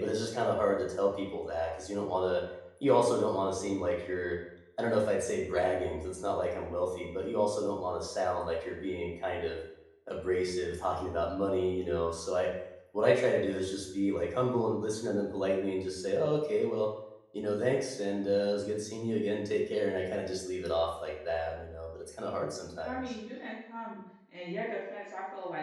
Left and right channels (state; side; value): identical; both; correlation 1.00